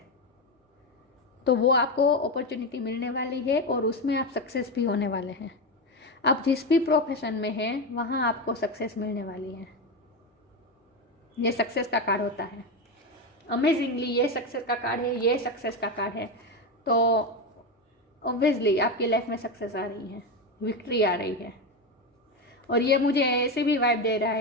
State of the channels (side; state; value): both; normal; correlation 0.14